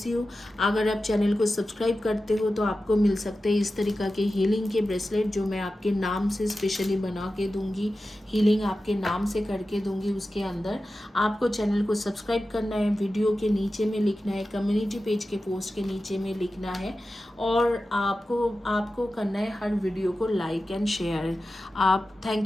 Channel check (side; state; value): both; normal; correlation 0.93